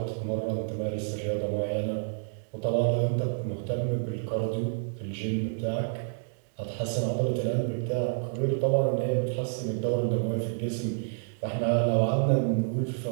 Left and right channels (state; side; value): silent; left; digital silence